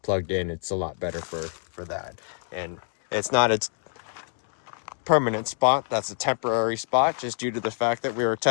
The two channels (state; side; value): silent; right; digital silence